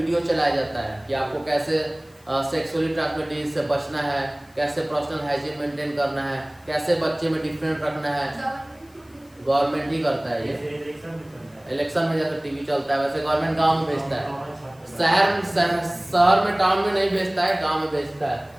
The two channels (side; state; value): left; noise; hiss, 30 dB below the sound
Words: चलाया जाता है कि आपको कैसे सेक्सुअली ट्रांसमिटेड डिजीज से बचना है, कैसे पर्सनल हाइजीन मेंटेन करना है, कैसे बच्चे में डिफरेंट रखना है। गवर्नमेंट ही करता है ये, इलेक्शन में जैसे टीवी चलता है वैसे गवर्नमेंट गांव में भेजता है, शहर में टाउन में नहीं भेजता है, गांव में भेजता है।